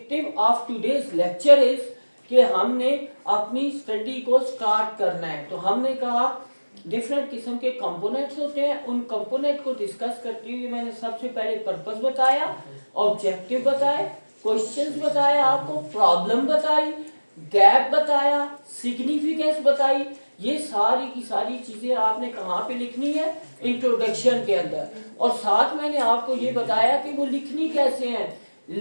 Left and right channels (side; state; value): both; inverted; correlation -1.00